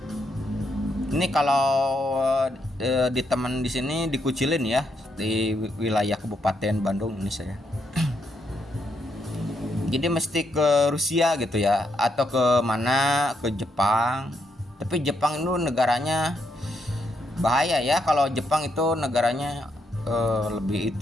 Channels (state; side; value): normal; both; correlation 0.78